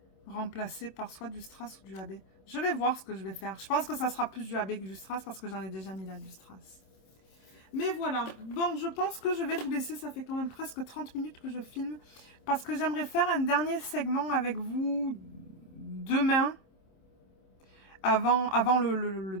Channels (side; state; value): right; late; 26 ms